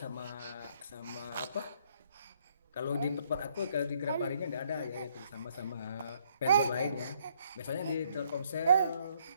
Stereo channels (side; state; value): both; inverted; correlation -0.69